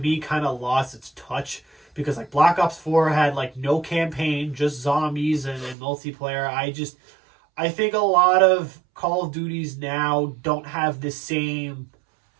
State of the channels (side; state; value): left; drops out; at 5.8 s